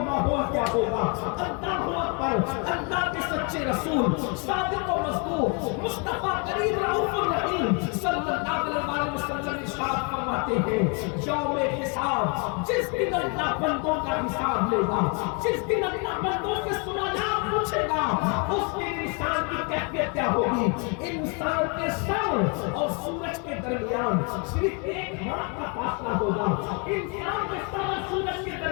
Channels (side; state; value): right; quieter; 35.3 dB